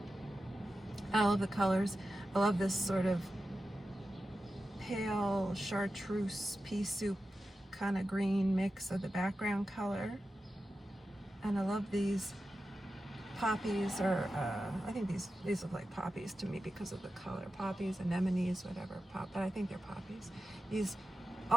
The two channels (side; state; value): both; normal; correlation 0.92